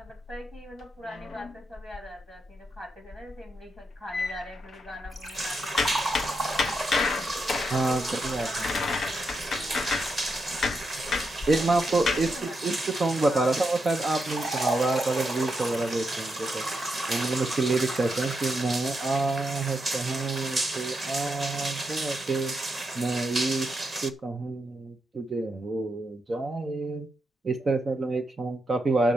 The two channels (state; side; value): normal; both; correlation 0.83